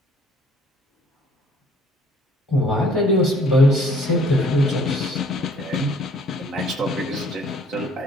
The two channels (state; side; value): normal; both; correlation 0.58